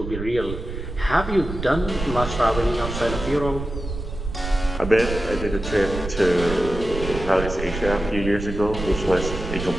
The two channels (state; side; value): noise; right; rumble, 7 dB below the sound